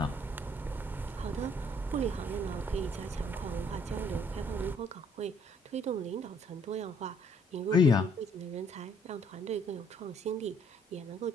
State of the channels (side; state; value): both; normal; correlation 0.64